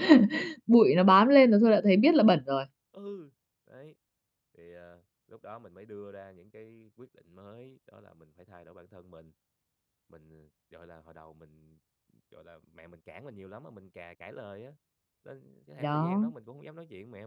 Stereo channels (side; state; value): both; identical; correlation 1.00